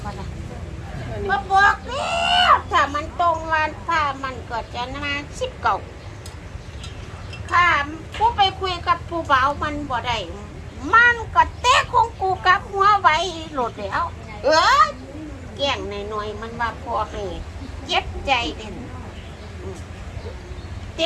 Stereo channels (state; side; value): identical; both; correlation 1.00